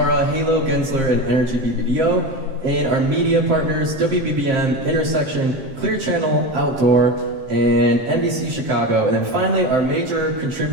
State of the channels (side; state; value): left; late; 7.6 ms